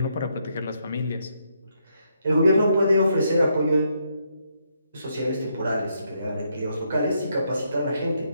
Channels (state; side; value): inverted; both; correlation -0.76